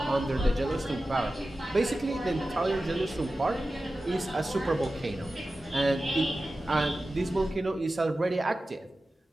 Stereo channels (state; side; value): normal; both; correlation 0.94